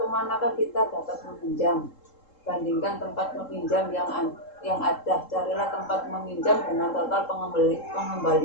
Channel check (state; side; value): late; right; 3.7 ms